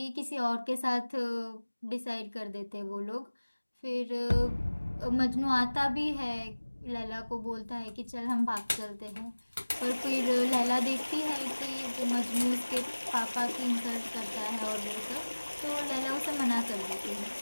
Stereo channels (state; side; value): inverted; both; correlation -1.00